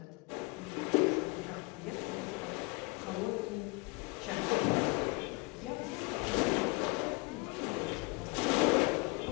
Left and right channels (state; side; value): quieter; right; 27.5 dB